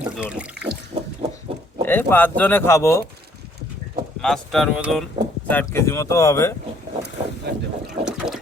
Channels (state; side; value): normal; both; correlation 0.63